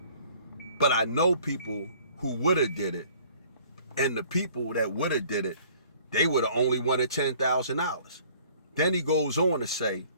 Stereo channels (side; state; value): both; inverted; correlation -0.55